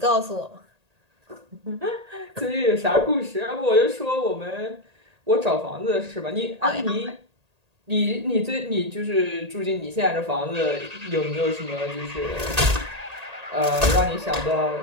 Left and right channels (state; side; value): late; left; 1.8 ms